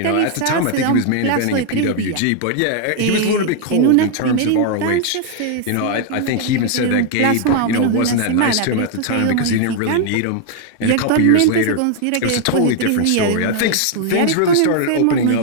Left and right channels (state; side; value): different; both; correlation 0.00